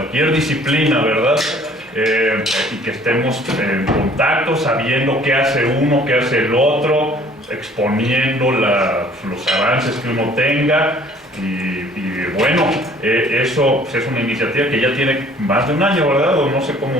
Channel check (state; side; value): normal; both; correlation 0.55